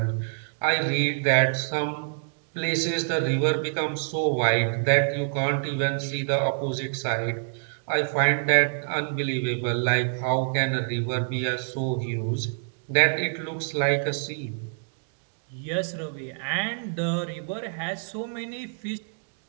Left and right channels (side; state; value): left; silent; digital silence